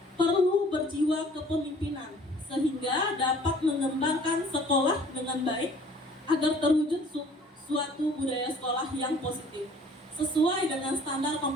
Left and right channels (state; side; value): normal; both; correlation 0.53